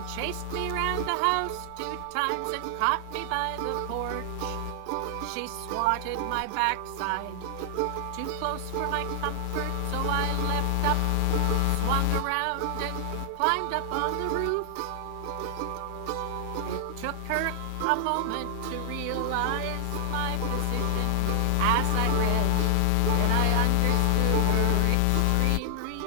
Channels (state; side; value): different; both; correlation 0.00